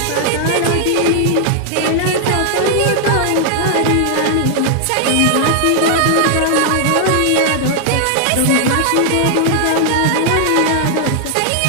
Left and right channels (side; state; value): both; different; correlation 0.00